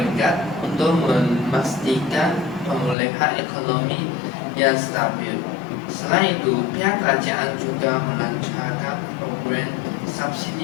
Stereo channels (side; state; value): right; drops out; at 3.0 s